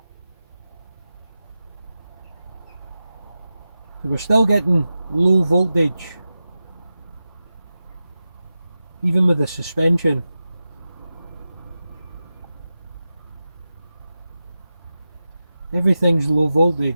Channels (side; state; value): both; inverted; correlation -0.93